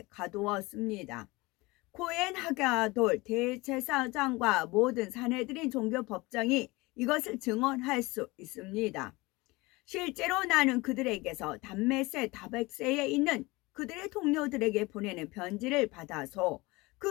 가두었습니다. 코엔 하가돌 대제사장과 모든 사내들인 종교법정이 이것을 증언할 수 있습니다. 실제로 나는 그들에게서 담메세 다백세에 있는 그들의 동료들에게 보내는 편지를 받아서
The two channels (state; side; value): quieter; right; 22.7 dB